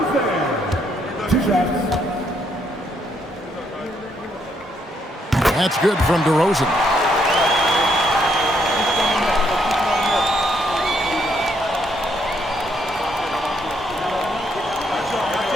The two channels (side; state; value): both; normal; correlation 0.73